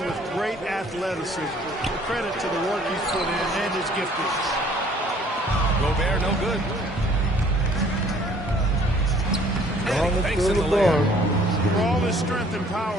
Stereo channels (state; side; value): normal; both; correlation 0.57